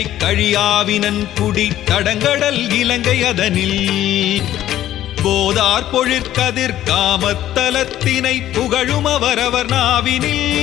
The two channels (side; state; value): right; quieter; 12.8 dB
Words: கழியாவினன் குடி தடங்கடல் இலங்கை அதனில் போதார் பொழிற்கதிர் காமத்தலத்தினை புகழும் அவரவர் நாவினில்